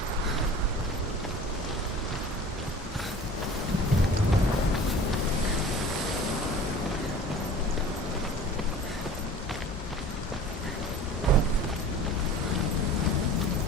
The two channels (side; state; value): both; normal; correlation 0.42